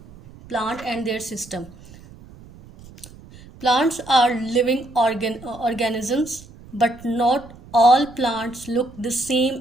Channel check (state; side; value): noise; right; rumble, 20 dB below the sound